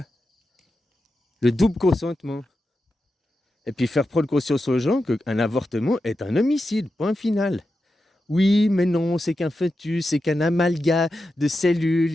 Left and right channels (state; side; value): normal; both; correlation 0.90